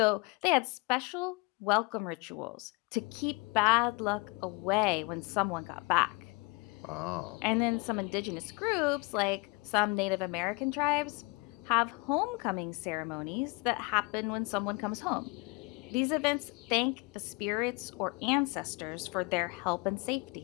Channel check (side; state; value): right; quieter; 27.3 dB